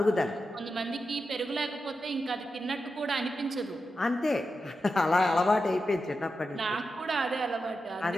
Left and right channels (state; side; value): normal; both; correlation 0.89